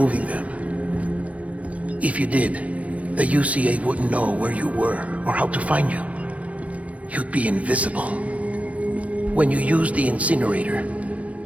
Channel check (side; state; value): left; late; 0.065 ms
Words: them. If you did, the UCA wouldn't know where you were or how to find you. You'd be invisible. When you use the incinerator,